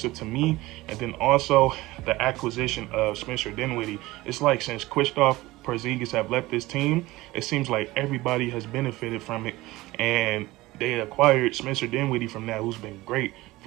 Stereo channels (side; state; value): left; quieter; 19.0 dB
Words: to me. And then also the acquisition of Spencer Dinwiddie. It's like since Kristaps Porzingis have left this team, it seems like everybody has benefited from it, and they acquired Spencer Dinwiddie from that, who's been great